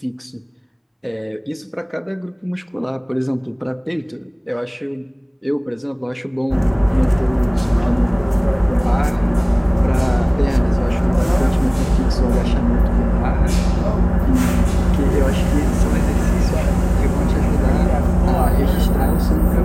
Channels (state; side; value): identical; both; correlation 1.00